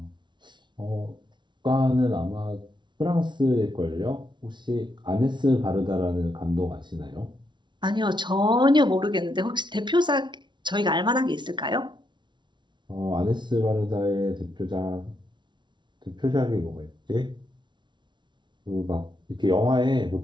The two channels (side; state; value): left; late; 0.23 ms